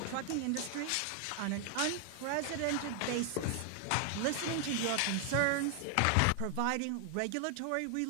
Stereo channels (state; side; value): different; both; correlation 0.00